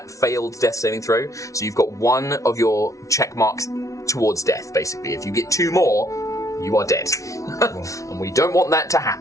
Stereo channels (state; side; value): late; right; 0.16 ms